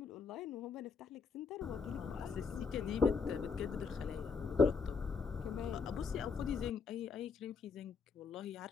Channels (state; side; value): quieter; right; 5.3 dB